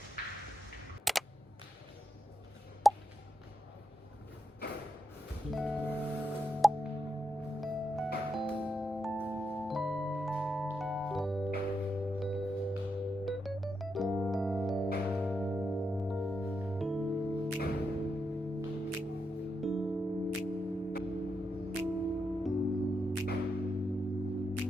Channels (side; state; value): both; normal; correlation 0.84